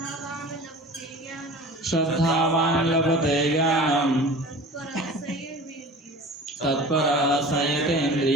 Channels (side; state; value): both; normal; correlation 0.39